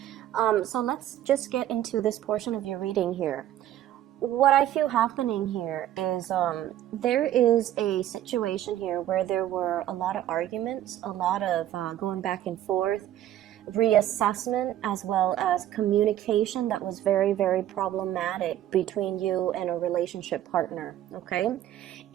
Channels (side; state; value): left; quieter; 12.3 dB